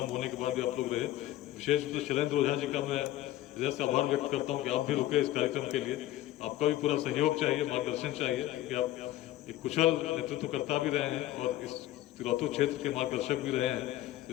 होने के बाद भी आप लोग रहे। विशेष रूप से शैलेंद्र ओझा जी का मैं हृदय से आभार व्यक्त करता हूँ कि आप भी रुके इस कार्यक्रम के लिए। आपका भी पूरा सहयोग चाहिए, मार्गदर्शन चाहिए, क्योंकि आप एक कुशल नेतृत्वकर्ता भी रहे हैं और इस तिलौतू क्षेत्र के मार्गदर्शक भी रहे हैं।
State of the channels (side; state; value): right; quieter; 14.6 dB